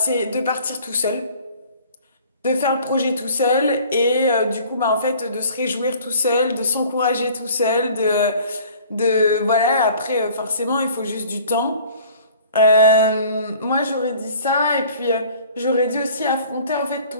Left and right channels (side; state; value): both; inverted; correlation -0.50